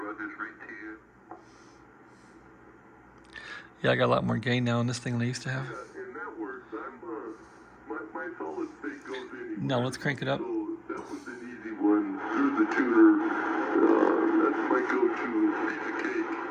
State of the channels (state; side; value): identical; both; correlation 1.00